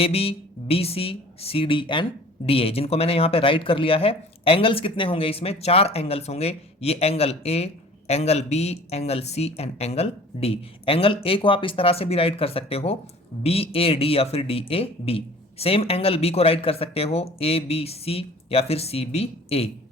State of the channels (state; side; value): normal; both; correlation 0.47